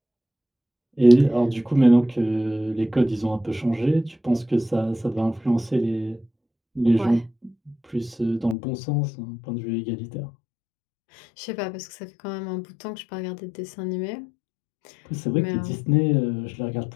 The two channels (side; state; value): right; drops out; at 8.6 s